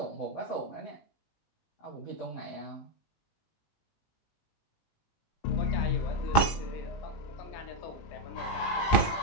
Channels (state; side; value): late; right; 18 ms